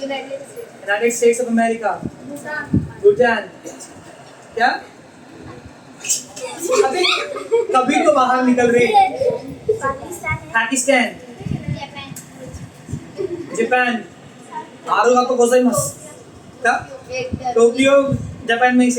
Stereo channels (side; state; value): both; identical; correlation 1.00